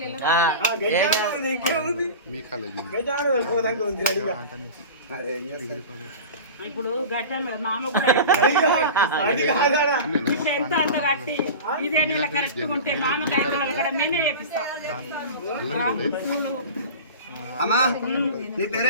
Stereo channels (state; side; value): inverted; both; correlation -0.33